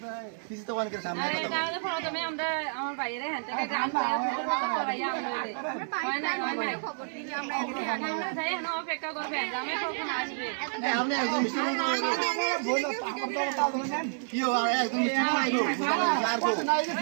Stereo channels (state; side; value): silent; left; digital silence